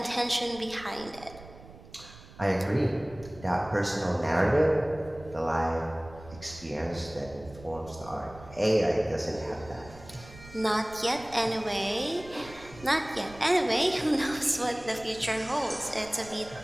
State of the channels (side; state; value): right; noise; rumble, 19 dB below the sound